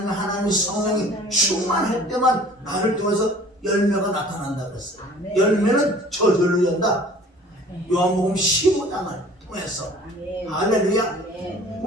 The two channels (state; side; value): normal; both; correlation 0.49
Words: 성령이 충만할 때만 나를 통해서 열매가 나타난다 그랬어요. 열매는 저절로 연다. 요한복음 15장을 통해서. 할렐루야.